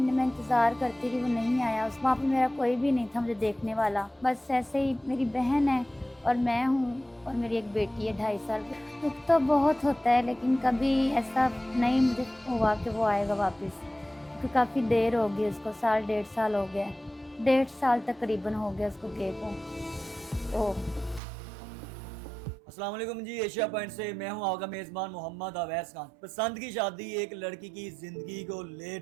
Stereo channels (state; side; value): drops out; left; at 21.2 s